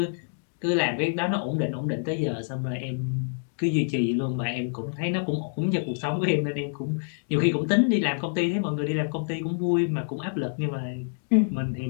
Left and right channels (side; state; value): right; silent; digital silence